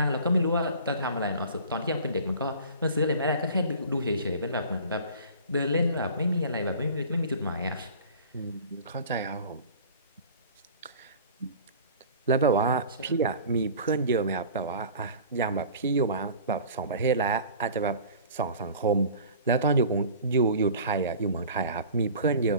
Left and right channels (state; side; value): inverted; both; correlation -0.42